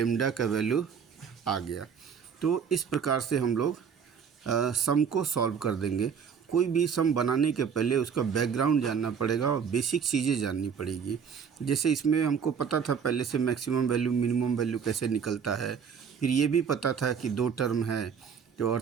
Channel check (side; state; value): left; quieter; 6.9 dB